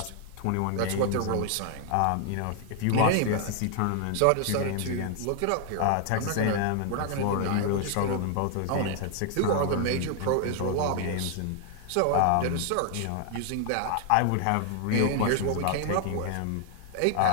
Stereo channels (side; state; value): both; different; correlation 0.00